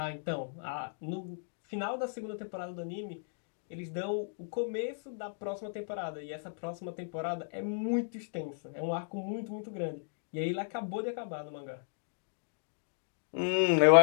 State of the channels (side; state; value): right; silent; digital silence